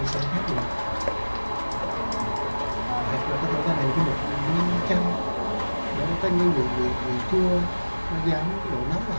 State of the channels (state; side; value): inverted; both; correlation -1.00